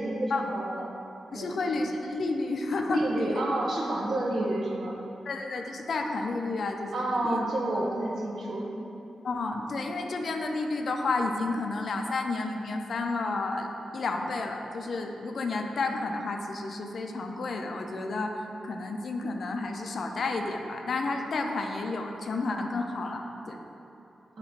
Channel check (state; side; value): normal; both; correlation 0.86